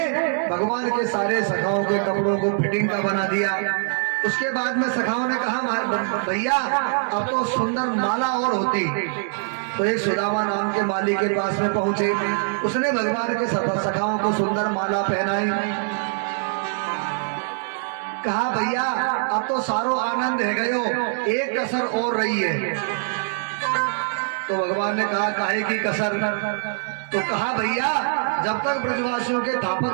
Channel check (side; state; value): left; silent; digital silence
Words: भगवान के सारे सखाओं के कपड़ों को फिटिंग का बना दिया। उसके बाद में सखाओं ने कहा भैया अब तो सुंदर माला और होती। तो एक सुदामा नाम के माली के पास में पहुंचे। उसने भगवान के सखाओं को सुंदर माला पहनाई। कहा भैया अब तो सारो आनंद है गयो, एक कसर और रही है। तो भगवान ने कहा काहे की कसर। तो कहा भैया जब तक ब्रजवासियों के